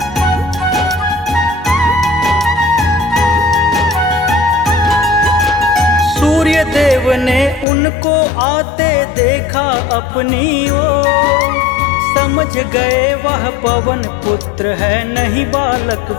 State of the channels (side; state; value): right; drops out; at 7.7 s